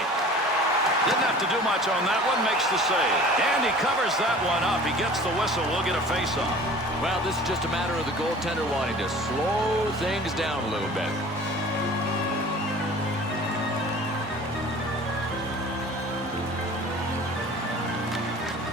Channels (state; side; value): normal; both; correlation 0.44